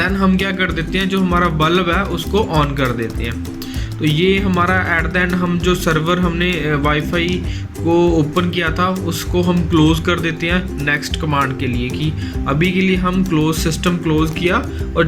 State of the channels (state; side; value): identical; both; correlation 1.00